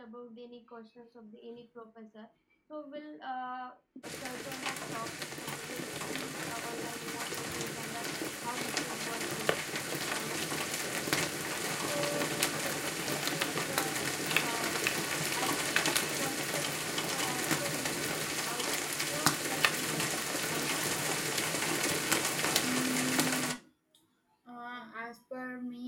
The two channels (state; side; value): identical; both; correlation 1.00